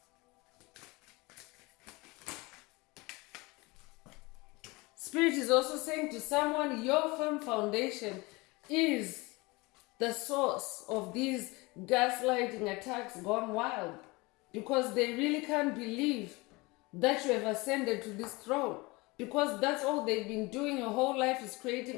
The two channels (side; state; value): right; quieter; 24.2 dB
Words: Spirit is also saying to someone, your firm foundation is the source of these gaslighting attacks gone wild, because they really can't believe that you have ascended to this throne, because that's all they've been doing your whole life, is